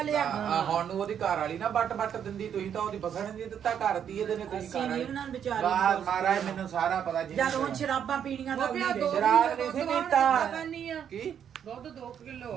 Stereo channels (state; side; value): quieter; left; 8.7 dB